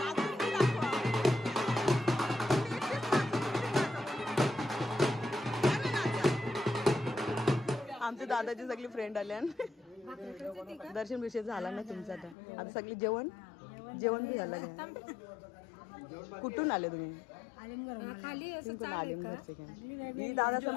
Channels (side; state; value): right; drops out; at 12.4 s